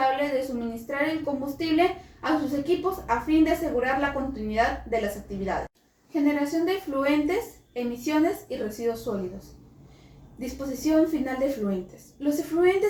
de suministrar el combustible a sus equipos a fin de asegurar la continuidad de las actividades. Generación de efluentes, emisiones y residuos sólidos. Disposición final de efluentes. Los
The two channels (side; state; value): both; identical; correlation 1.00